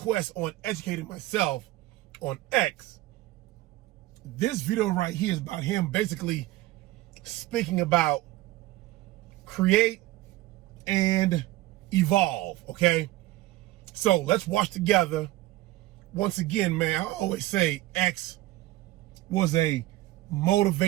on educating myself on X, this video right here is about him basically speaking about create and evolve, okay? So let's watch together. Once again, man, I always say X was a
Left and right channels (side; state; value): left; quieter; 17.1 dB